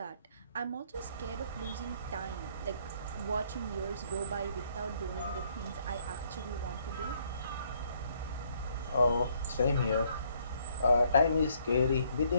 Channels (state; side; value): inverted; both; correlation -0.68